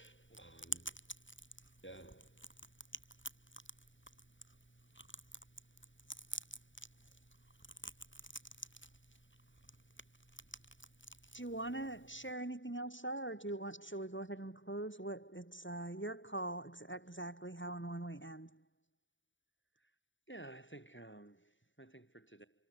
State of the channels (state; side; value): late; right; 0.55 ms